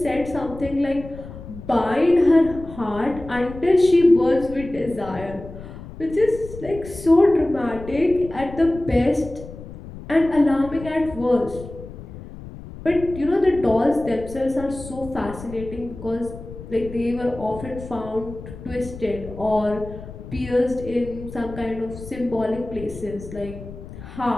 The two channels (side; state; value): left; noise; rumble, 14 dB below the sound